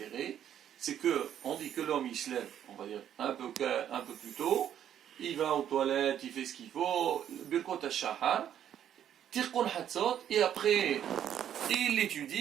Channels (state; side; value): quieter; left; 10.1 dB